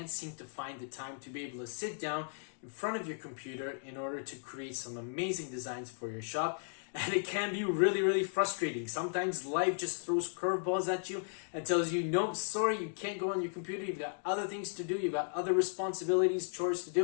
seem to find the time to be able to sit down in front of your computer in order to create some amazing designs for your shop. And it can be really frustrating. Sometimes life just throws curveballs at you and tells you, nope, sorry, you can't go on your computer. You've got other things to do. You've got other responsibilities, chores to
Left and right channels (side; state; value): right; silent; digital silence